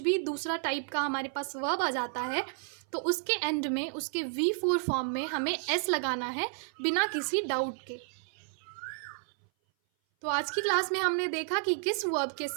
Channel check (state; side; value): silent; left; 57 dB below the other